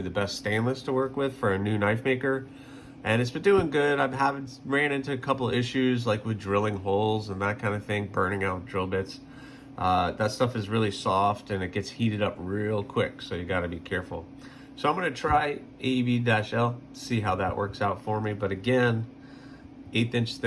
the best stainless to work with for a new knife maker, and it's been doing good. ran into a couple of issues, like with drilling holes and that kind of thing, burning out drill bits. That stuff is really soft and it gets heated up real quick, so you got to be careful. So I'm going to try AEB-L, see how that works out for me. But again, 1/8 inch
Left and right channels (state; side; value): identical; both; correlation 1.00